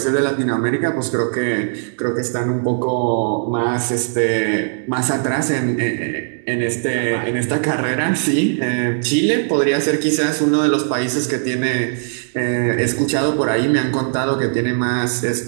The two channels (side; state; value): left; silent; digital silence